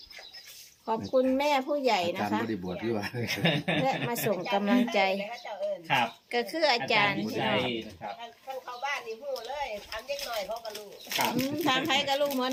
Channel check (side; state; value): both; identical; correlation 1.00